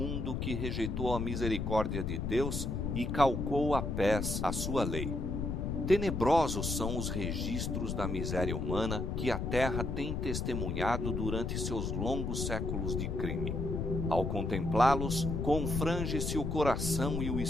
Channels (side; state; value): left; noise; rumble, 1 dB below the sound